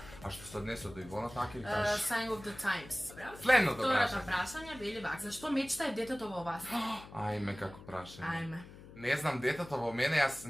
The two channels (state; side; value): noise; left; hum, 17 dB below the sound